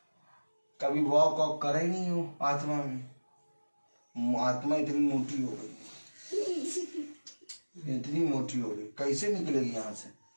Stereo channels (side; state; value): both; inverted; correlation -1.00